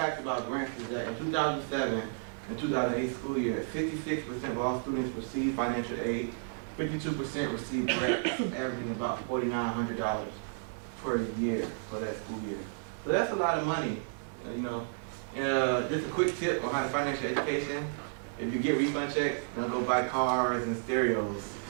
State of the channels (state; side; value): silent; left; digital silence